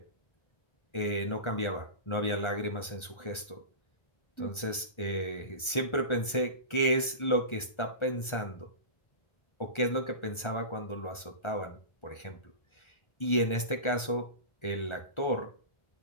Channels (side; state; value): right; late; 1.3 ms